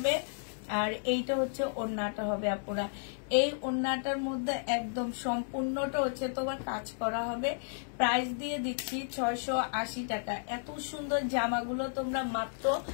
আর এইটা হচ্ছে ওড়নাটা হবে আপুরা। এই ওড়নাটার মধ্যে একদম সম্পূর্ণটা হচ্ছে তোমার কাজ করা হবে। প্রাইস দিয়ে দিচ্ছি 680 টাকা। এত সুন্দর জামাগুলো তোমরা মাত্র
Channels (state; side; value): silent; right; digital silence